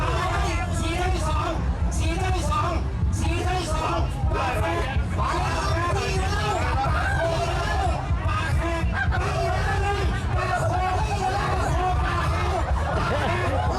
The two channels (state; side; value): identical; both; correlation 1.00